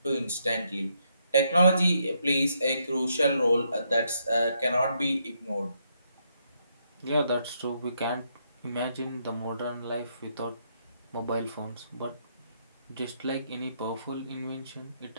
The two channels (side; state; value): both; inverted; correlation -0.76